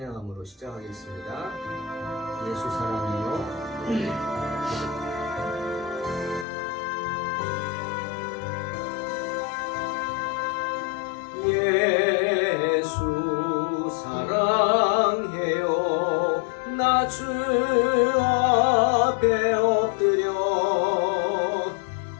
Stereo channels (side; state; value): right; drops out; at 6.5 s